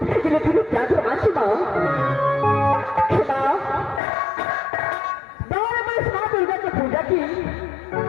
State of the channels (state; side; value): drops out; right; at 4.0 s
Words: के लिए तुरुप क्या तो मानसी माँ दौड़ में इस माँ दुर्गा की पूजा की।